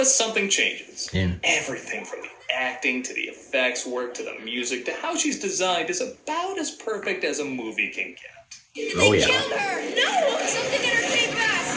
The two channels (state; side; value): identical; both; correlation 1.00